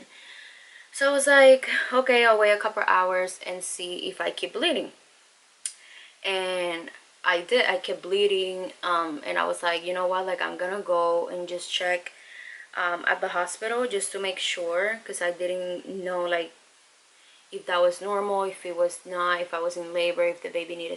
So I was like, okay, I'll wait a couple hours and see if I keep bleeding. And I did. I kept bleeding, and I was like, you know what, like I'm gonna go and just check at the hospital just to make sure, because I didn't know like if that was normal, if it was not, if I was in labor, if the baby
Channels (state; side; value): identical; both; correlation 1.00